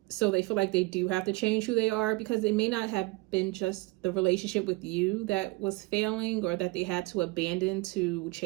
So they feel like they do have to change who they are, because it may not have been just the relationship with you that was failing, or that they had to abandon to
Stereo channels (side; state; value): left; quieter; 23.6 dB